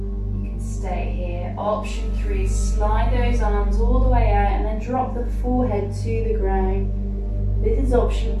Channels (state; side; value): identical; both; correlation 1.00